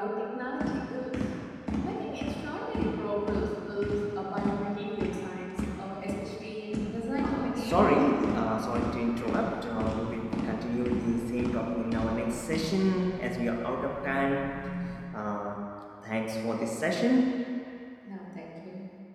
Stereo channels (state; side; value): identical; both; correlation 1.00